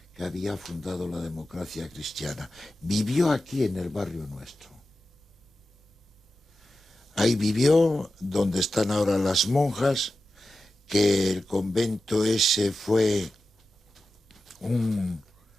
que había fundado la democracia cristiana. Vivió aquí en el barrio nuestro. Ahí vivió, donde están ahora las monjas, que el convento ese fue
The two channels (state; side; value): normal; both; correlation 0.92